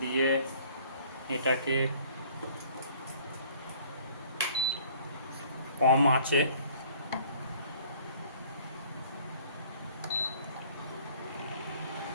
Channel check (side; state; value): both; inverted; correlation -0.55